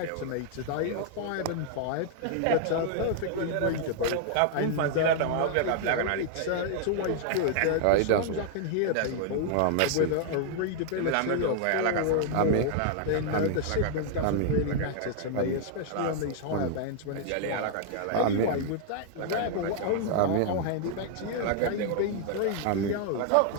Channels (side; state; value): both; different; correlation 0.00